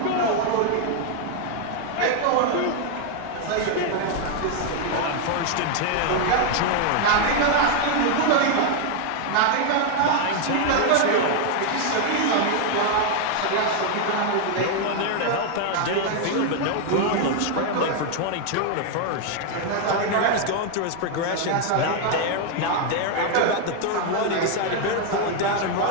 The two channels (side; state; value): both; different; correlation 0.01